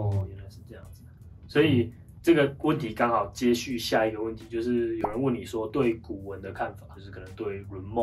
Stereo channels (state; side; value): identical; both; correlation 1.00